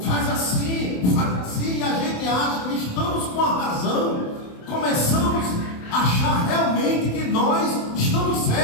assim, e a gente acha que estamos com a razão. Começamos a achar realmente que nós estamos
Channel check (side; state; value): right; late; 27 ms